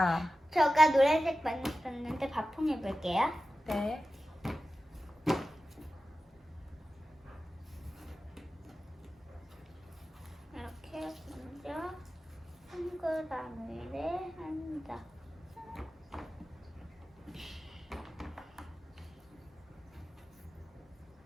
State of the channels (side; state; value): both; normal; correlation 0.94